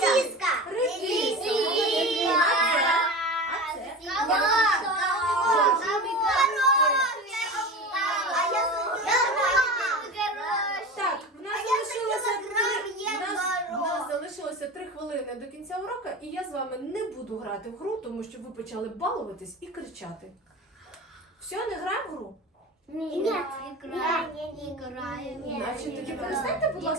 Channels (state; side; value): normal; both; correlation 0.29